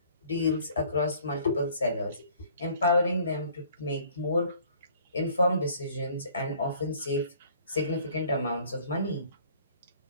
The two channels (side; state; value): both; inverted; correlation -0.56